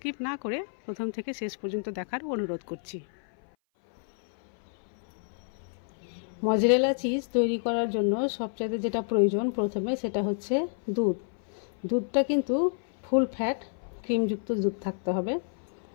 না করে প্রথম থেকে শেষ পর্যন্ত দেখার অনুরোধ করছি। মজরেলা চিজ তৈরি করার জন্য সবচাইতে যেটা প্রয়োজন প্রথমে সেটা হচ্ছে দুধ। দুধটা কিন্তু ফুল ফ্যাট ক্রিমযুক্ত দুধ থাকতে হবে,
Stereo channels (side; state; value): right; silent; 57 dB below the other